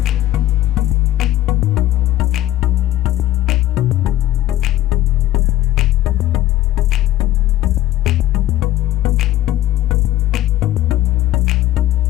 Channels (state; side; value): quieter; right; 14.0 dB